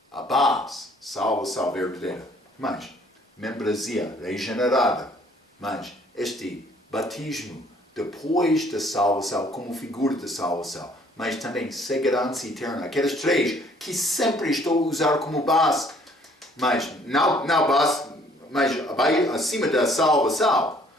A base, salvação verdadeira. Mas, membresia regenerada. Mas, este batismo depois da salvação, como figura da salvação. Mas também segurança eterna. Aquelas três que sempre estou a usar como base. Mas, não base, mas acima da salvação.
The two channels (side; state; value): both; normal; correlation 0.60